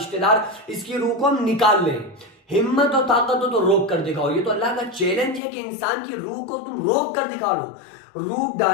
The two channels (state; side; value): drops out; right; at 5.4 s